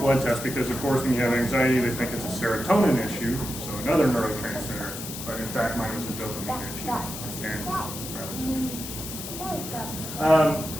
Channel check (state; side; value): noise; left; hiss, 8 dB below the sound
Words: test because, of course, when you have anxiety, they think it's a serotonin issue, so another neurotransmitter. But in fact, mine was a dopamine issue. And that was